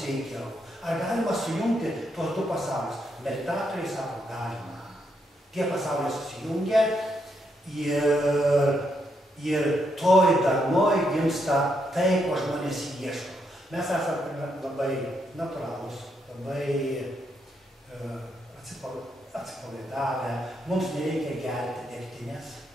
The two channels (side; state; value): both; normal; correlation 0.78